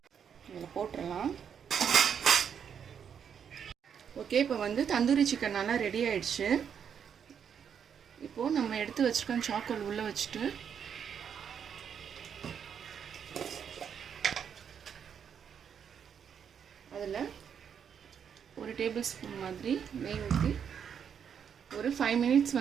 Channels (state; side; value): quieter; left; 7.7 dB